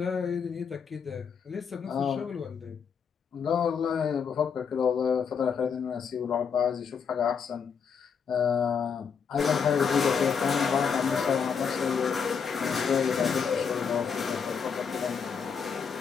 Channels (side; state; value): right; quieter; 6.5 dB